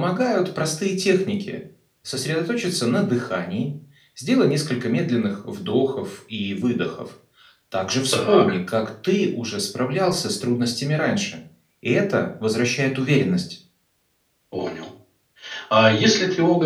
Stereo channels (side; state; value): both; identical; correlation 1.00